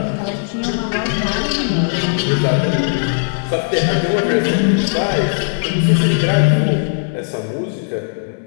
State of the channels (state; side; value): silent; right; digital silence